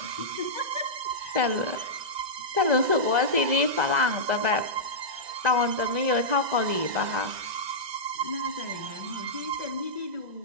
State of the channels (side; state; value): left; late; 2.0 ms